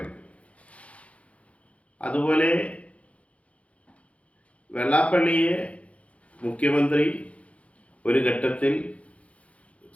അതുപോലെ വെള്ളാപ്പള്ളിയെ മുഖ്യമന്ത്രി ഒരു ഘട്ടത്തിൽ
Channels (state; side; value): late; right; 0.064 ms